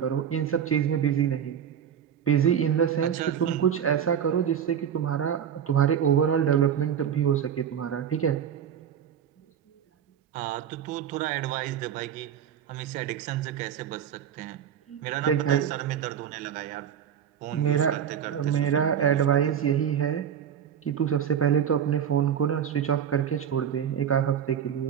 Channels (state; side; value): quieter; left; 8.7 dB